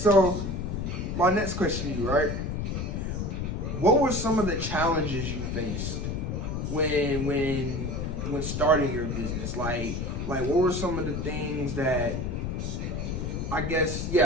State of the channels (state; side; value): noise; left; rumble, 3 dB below the sound